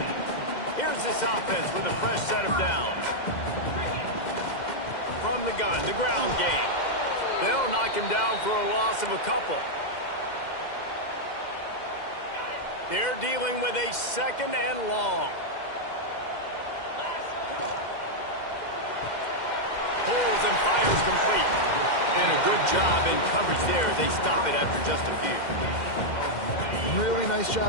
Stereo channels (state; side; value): late; right; 2.1 ms